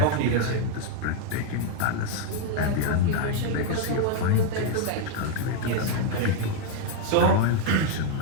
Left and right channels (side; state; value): both; different; correlation 0.00